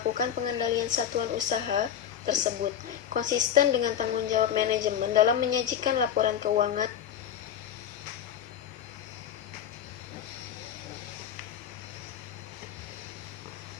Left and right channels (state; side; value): quieter; right; 9.5 dB